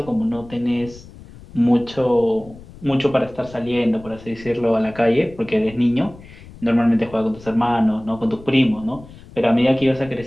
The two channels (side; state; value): left; noise; rumble, 19 dB below the sound